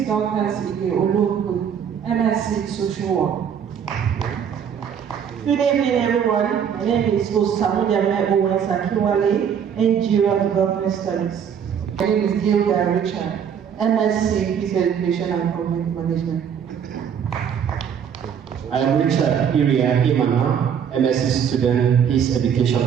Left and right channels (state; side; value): quieter; left; 8.0 dB